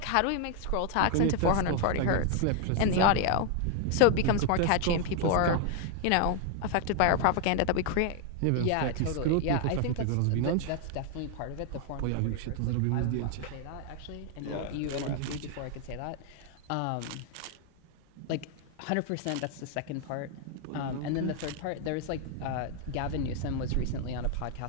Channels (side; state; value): both; different; correlation 0.00